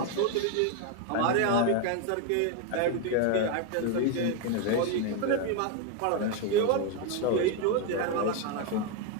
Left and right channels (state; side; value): different; both; correlation 0.02